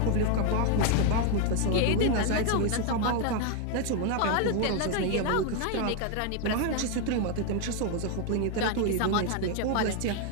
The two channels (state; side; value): different; both; correlation 0.01